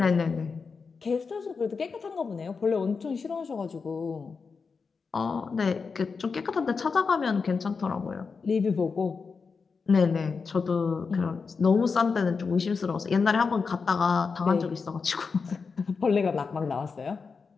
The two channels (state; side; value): quieter; right; 5.0 dB